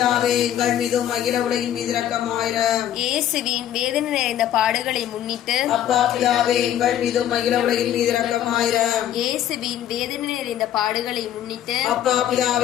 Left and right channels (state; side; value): quieter; right; 11.1 dB